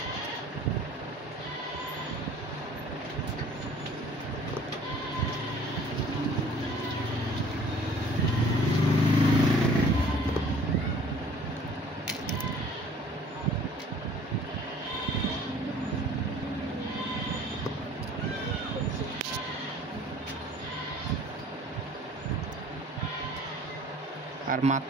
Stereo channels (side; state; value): both; normal; correlation 0.52